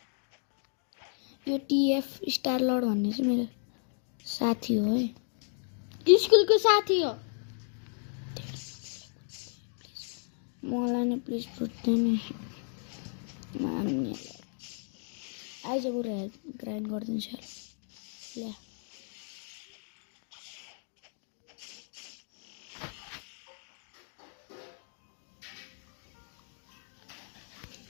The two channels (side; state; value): right; silent; 55 dB below the other